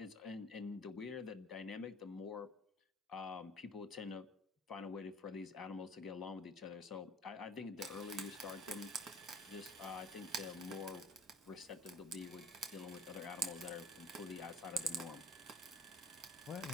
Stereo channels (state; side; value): normal; both; correlation 0.48